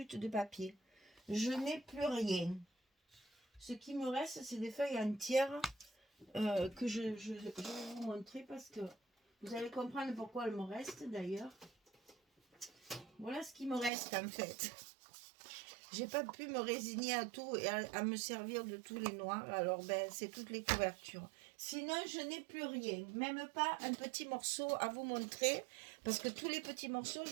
de papier. Je n'ai plus rien. Ce qui me reste, c'est des feuilles entières que je vais vous montrer parce que vous allez comprendre pourquoi elles me restent d'ailleurs. Voilà ce qui me reste en fait. J'ai pas pu me résigner à tout et à me servir de tous les noirs. Alors ben c'est toutes les couvertures. Sinon je n'ai plus rien. Même pas un petit morceau à vous montrer. Parce que tous les petits morceaux,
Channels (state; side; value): drops out; left; at 13.9 s